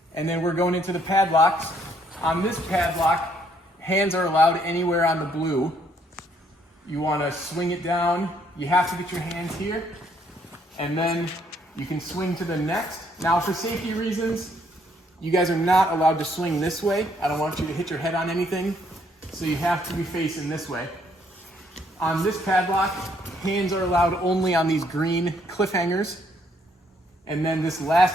and then we're going into the padlocks. On this padlock, hands are allowed anywhere on the blue. You want to swing it down. You have to get your hands here, and then you can swing to the next. Now, for safety reasons, you guys are not allowed to swing this way. I don't want you to hit your head on anything. so you have to be facing this way. On this padlock, hands are allowed only on these green cliffhangers. And then this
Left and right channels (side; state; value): both; normal; correlation 0.68